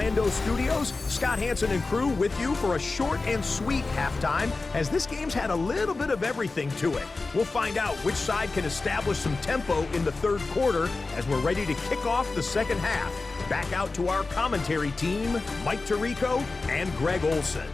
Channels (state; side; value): quieter; right; 3.7 dB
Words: studios. Scott Hansen and crew with you for a short and sweet halftime, as this game's had a little bit of everything to it. We'll find out which side can establish some tempo in the 3rd quarter as we're ready to kick off the 2nd half. Back out to our commentary team, Mike Tirico and Greg Olson.